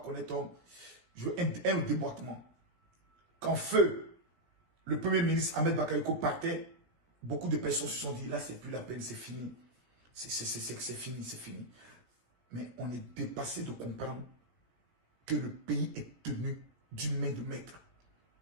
un déboîtement. Quand Feu, le premier ministre Ahmed Bakayoko partait, beaucoup de personnes se sont dit, là c'est plus la peine, c'est fini. C'est fini, c'est fini. Mais on est dépassé de comprendre que le pays est tenu d'une main de maître.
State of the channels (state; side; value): late; left; 17 ms